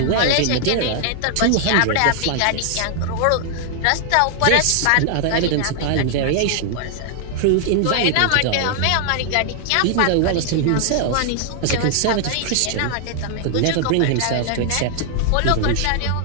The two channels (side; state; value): both; different; correlation 0.00